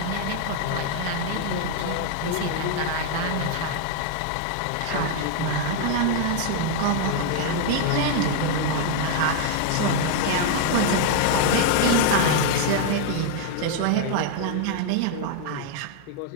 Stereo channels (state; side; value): different; both; correlation 0.00